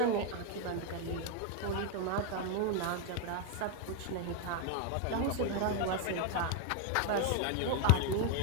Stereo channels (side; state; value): both; different; correlation 0.01